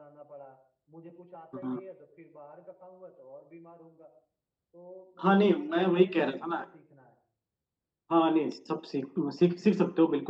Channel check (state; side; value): identical; both; correlation 1.00